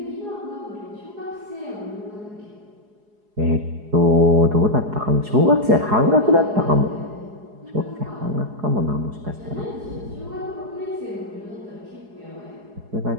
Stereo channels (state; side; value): late; left; 4.8 ms